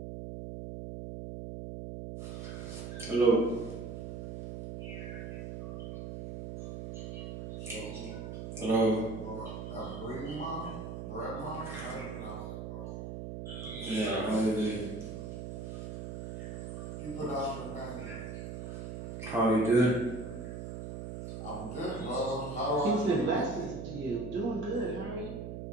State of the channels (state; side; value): noise; right; hum, 7 dB below the sound